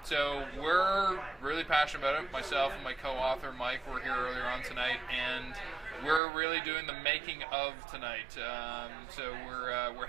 So we're really passionate about it. Myself and my co-author Mike were here earlier on tonight, and we're really doing the making of tonight. So we're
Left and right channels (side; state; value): left; drops out; at 6.2 s